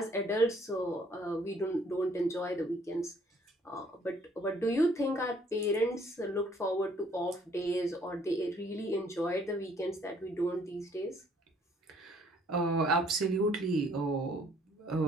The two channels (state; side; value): normal; both; correlation 0.62